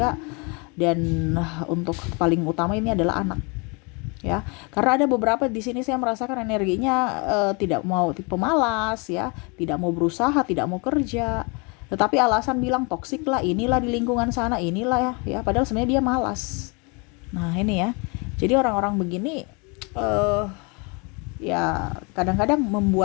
dan untuk paling utama ini adalah anak. Ya, karena ada beberapa di sini saya merasakan energinya tidak mau, tipe malas ya, tidak mau berusaha, tidak mau kerja, tetapi alasan bilang toksik lah, inilah di lingkungan sana, inilah ya, padahal sebenarnya dia malas. Nah ini ya, jadi orang-orang begini ya kadang-kadang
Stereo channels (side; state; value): right; quieter; 31.2 dB